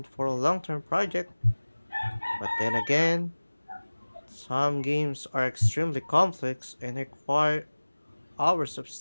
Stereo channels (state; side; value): inverted; both; correlation -1.00